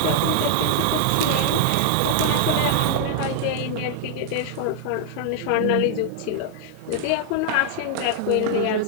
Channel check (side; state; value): both; different; correlation 0.00